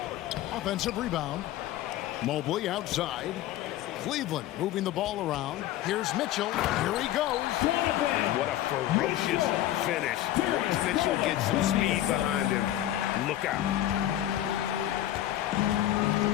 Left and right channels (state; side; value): quieter; right; 13.4 dB